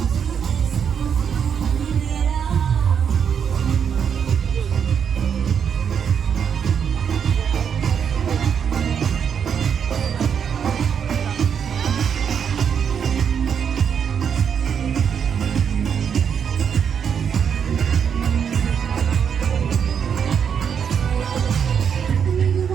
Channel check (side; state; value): left; quieter; 7.5 dB